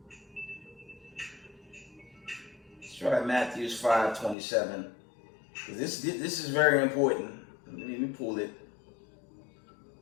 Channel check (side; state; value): right; drops out; at 4.4 s